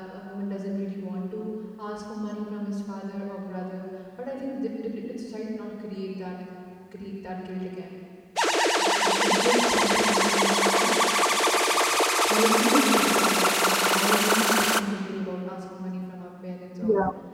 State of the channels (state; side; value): identical; both; correlation 1.00